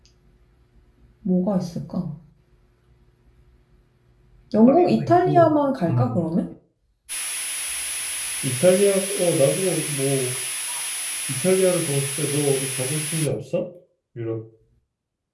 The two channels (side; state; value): both; identical; correlation 1.00